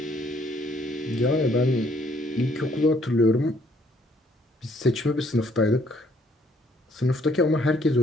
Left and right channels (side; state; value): both; normal; correlation 0.65